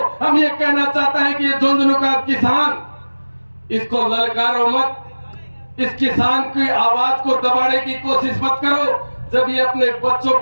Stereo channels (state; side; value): inverted; both; correlation -1.00